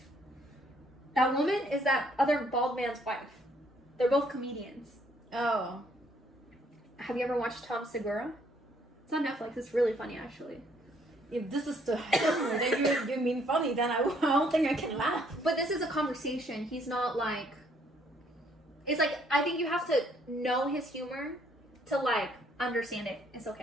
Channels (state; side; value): normal; both; correlation 0.66